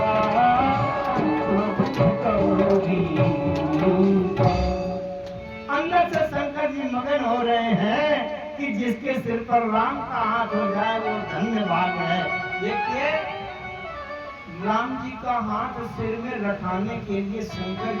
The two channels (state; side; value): identical; both; correlation 1.00